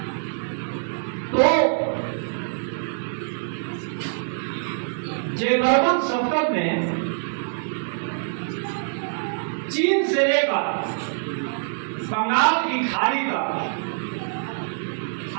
तो जयवर्मन सप्तम ने चीन से लेकर बंगाल की खाड़ी तक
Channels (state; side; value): silent; left; digital silence